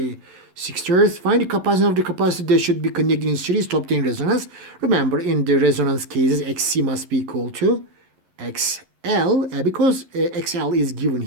6 Hz. Find the capacitance of the capacitor that should be connected in series to obtain resonance. Remember, in the resonance cases, XC must be equal to XL. L, because XL is given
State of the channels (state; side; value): late; left; 11 ms